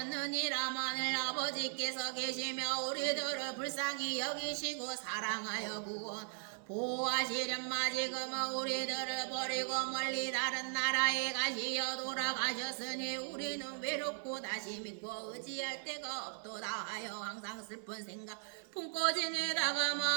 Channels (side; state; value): left; silent; 52 dB below the other